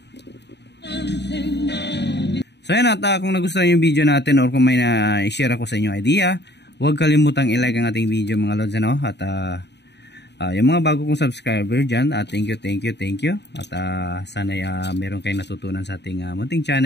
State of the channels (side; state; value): right; late; 0.50 ms